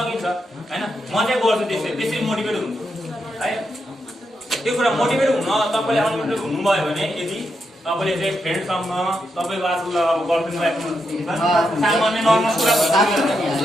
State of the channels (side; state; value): both; normal; correlation 0.83